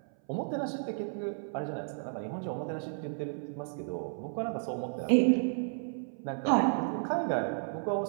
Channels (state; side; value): silent; left; 56 dB below the other